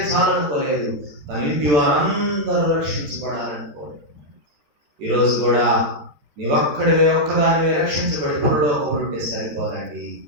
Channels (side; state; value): left; late; 13 ms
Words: చాలనుకోలేదు, తన ఇంటి వారందరూ రక్షించబడాలనుకోలేదు. ఈరోజు కూడా నీ ఒక్కదానివే రక్షించబడి పరలోకములో ఉంటే సరిపోదండి.